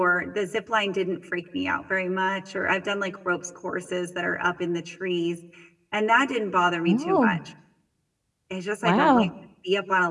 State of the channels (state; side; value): identical; both; correlation 1.00